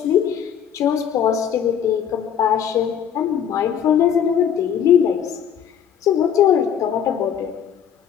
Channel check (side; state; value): right; quieter; 8.7 dB